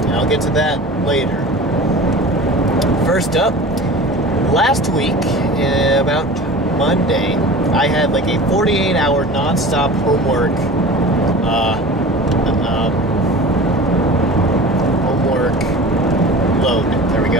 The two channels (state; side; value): normal; both; correlation 0.37